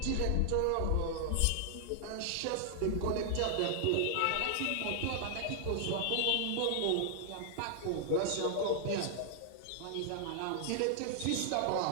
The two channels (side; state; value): both; different; correlation -0.01